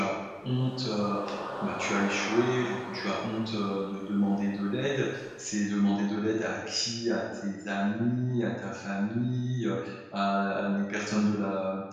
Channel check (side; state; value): both; identical; correlation 1.00